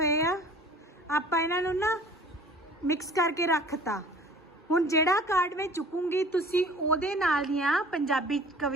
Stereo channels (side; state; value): both; normal; correlation 0.47